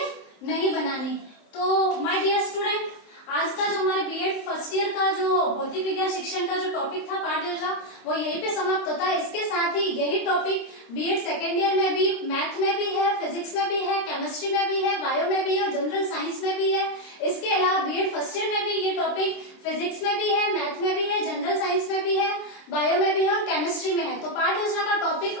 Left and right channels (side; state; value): right; late; 26 ms